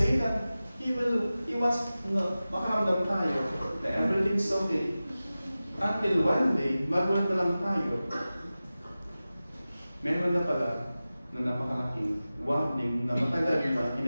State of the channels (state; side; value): inverted; both; correlation -0.96